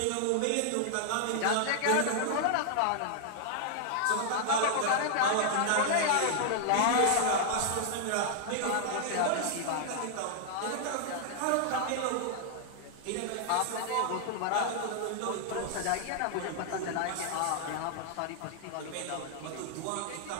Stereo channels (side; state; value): both; different; correlation 0.00